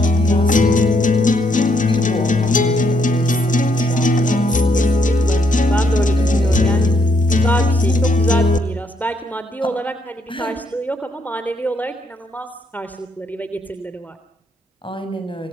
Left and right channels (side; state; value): both; normal; correlation 0.73